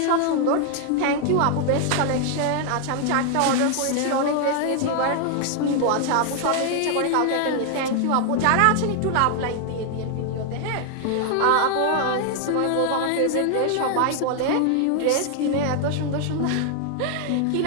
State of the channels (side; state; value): both; different; correlation 0.00